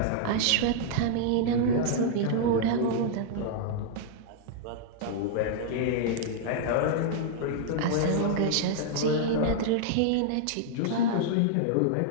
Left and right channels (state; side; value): different; both; correlation -0.01